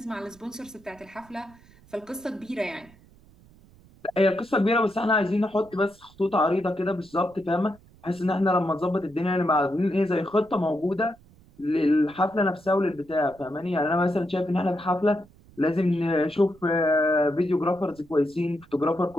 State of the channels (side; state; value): right; noise; rumble, 26 dB below the sound